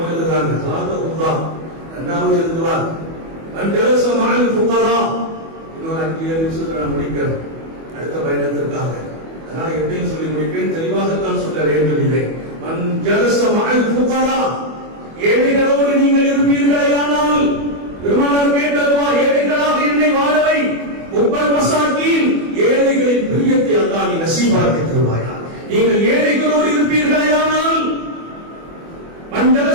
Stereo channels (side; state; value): left; late; 24 ms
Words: எழுதுறாங்க. சாதஹுல்லாஹ் இரண்டாவது எழுதுவார் மன்ஜலஸ மஅல் ஃபுகரா. இன்னொரு 5 நிமிஷத்துல நான் முடிக்கிறேன் அடுத்த பயணத்திற்காக. அதனால எப்படின்னு சொல்லி முடிப்பேன், தெளிவாகத்தான் சொல்ல வேண்டும். இதை மன்ஜலஸ மஅல் ஃபுகரா, ஏழைகளோடு நீங்கள் இருப்பீர்களேயானால், பெருமானார் கேட்டதுவா, ஏழைகளாக என்னை வாழவை, உப்பல் மசாக்கீன், ஏழைகளின் பிரியத்தை அல்லாஹ் நீ நசீபாக்கி தருவாயா. நீங்கள் ஏழைகளோடு இருப்பீர்களேயானால்,